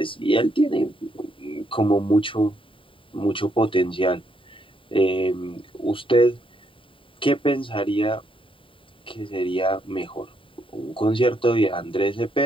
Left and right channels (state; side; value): late; right; 0.25 ms